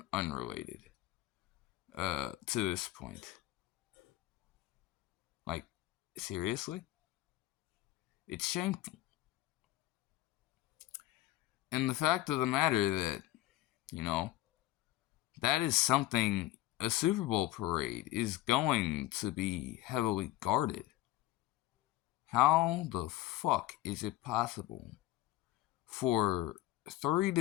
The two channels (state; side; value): quieter; right; 15.8 dB